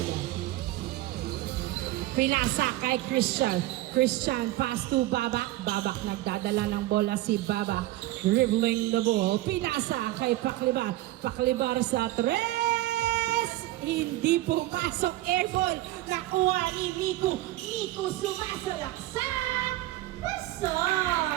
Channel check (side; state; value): left; quieter; 16.6 dB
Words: Pinasa kay Christian. Christian, pass to Babak. Babak, nagdadala ng bola si Babak. Dribbling the ball. Pinasa kay Paklibar. Paklibar sa tres. Hindi pumasok. Airball. Nakuha ni Miku. Miku sumasalaksak.